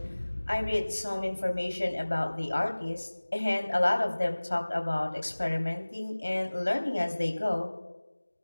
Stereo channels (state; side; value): inverted; both; correlation -1.00